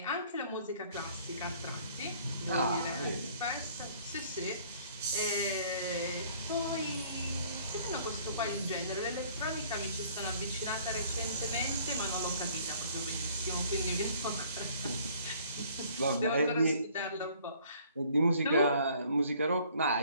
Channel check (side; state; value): both; inverted; correlation -0.57